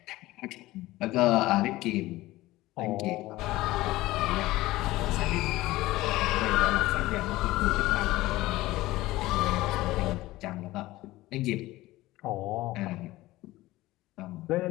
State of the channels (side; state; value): right; quieter; 17.9 dB